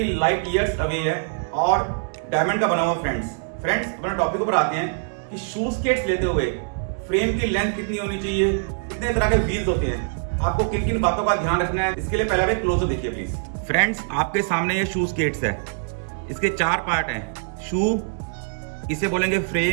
लाइट ईयर्स अवे है और डायमंड का बना हुआ। फ्रेंड्स अपने टॉपिक पर आते हैं कि शू स्केट्स लेते हुए फ्रेम की लेंथ कितनी होनी चाहिए, कितने तरह के व्हील्स होते हैं, आपको किन किन बातों का ध्यान रखना है, इसके लिए पहले आप एक क्लोजर देखिए प्लीज। फ्रेंड्स, आपके सामने ये शू स्केट्स है, इसके 4 पार्ट हैं। शू, इसे बोलेंगे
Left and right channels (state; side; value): silent; left; digital silence